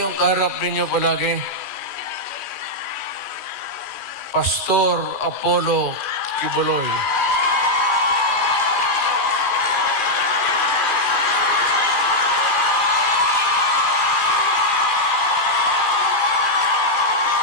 yung kaharap ninyo palagi? Pastor Apollo Kibuloy.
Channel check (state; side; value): late; left; 2.4 ms